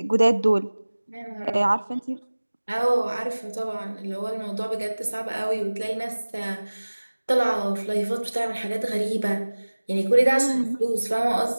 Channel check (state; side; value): inverted; both; correlation -1.00